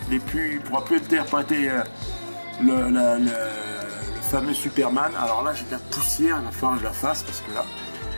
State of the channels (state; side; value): inverted; both; correlation -1.00